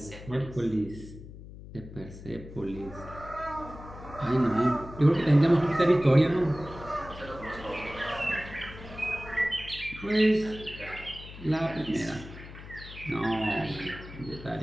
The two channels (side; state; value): left; noise; hum, 14 dB below the sound